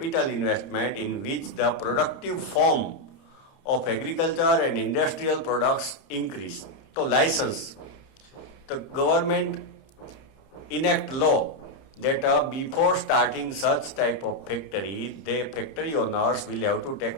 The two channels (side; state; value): right; late; 31 ms